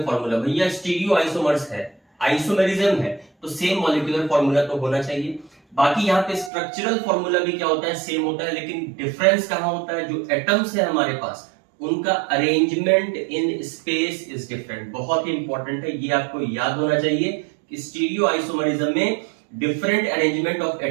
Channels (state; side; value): drops out; left; at 6.5 s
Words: फॉर्मूला। भैया स्टीरियो आइसोमर्स है, आइसोमेरिज्म है, तो सेम मॉलिक्यूलर फॉर्मूला तो होना चाहिए। बाकी यहाँ पे स्ट्रक्चरल फॉर्मूला भी क्या होता है, सेम होता है, लेकिन डिफरेंस कहां होता है, जो एटम्स है हमारे पास उनका arrangement in space is different. बहुत ही इंपॉर्टेंट है, ये आपको याद होना चाहिए कि स्टीरियो आइसोमरिज्म में different arrangement of